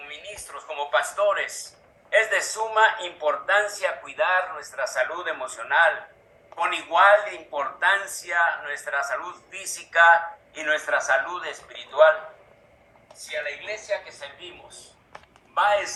ministros, como pastores, es de suma importancia cuidar nuestra salud emocional, con igual importancia nuestra salud física y nuestra salud espiritual. Si a la iglesia que servimos va a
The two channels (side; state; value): both; identical; correlation 1.00